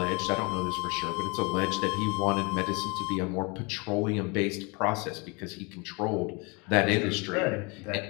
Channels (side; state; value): right; quieter; 29.7 dB